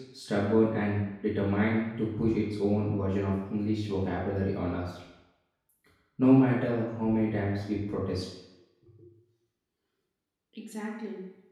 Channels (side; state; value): both; identical; correlation 1.00